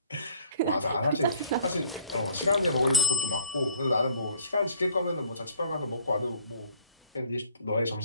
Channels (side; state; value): both; inverted; correlation -0.53